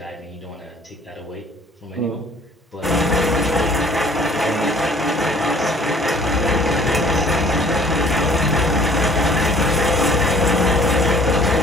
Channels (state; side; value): normal; both; correlation 0.54